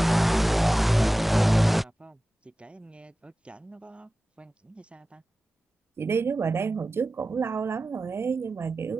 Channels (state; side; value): normal; both; correlation 0.96